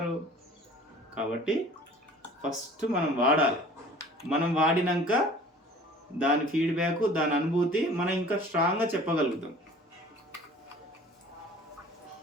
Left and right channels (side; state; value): both; normal; correlation 0.47